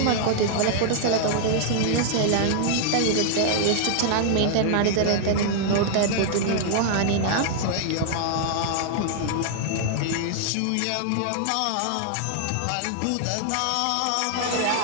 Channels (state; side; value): different; both; correlation -0.01